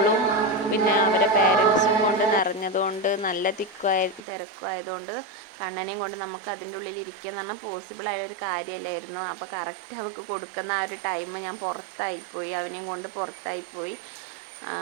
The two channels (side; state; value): left; drops out; at 4.2 s